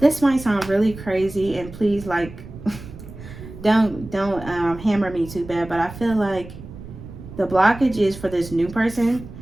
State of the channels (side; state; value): right; noise; rumble, 14 dB below the sound